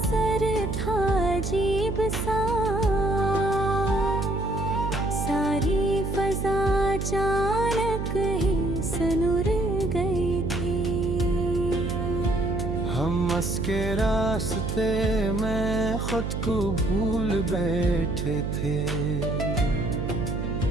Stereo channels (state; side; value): noise; right; hum, 3 dB below the sound